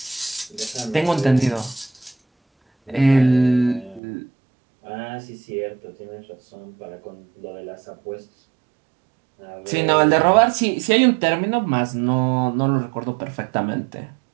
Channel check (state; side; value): drops out; left; at 4.0 s